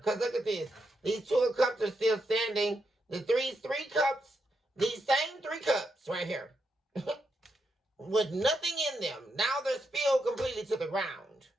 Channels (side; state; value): both; normal; correlation 0.82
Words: Because look at this. These 2 of Cups are still standing. The three cups, these same 3 cups right here. With nothing in them. Now they're spilled completely to the ground.